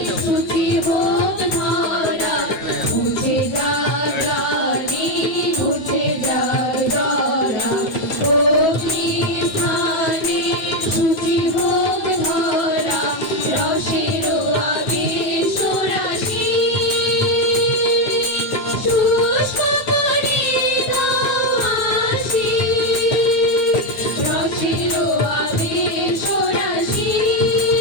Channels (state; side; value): late; right; 9.5 ms